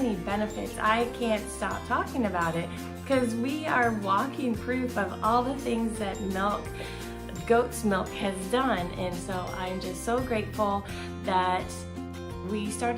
benefits. I can't stop talking about it because we are walking proof of all the things that goat's milk has done. And so I'm just so grateful that we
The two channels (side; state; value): both; identical; correlation 1.00